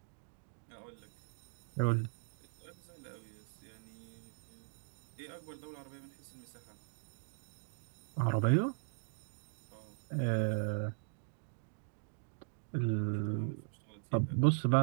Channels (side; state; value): left; silent; digital silence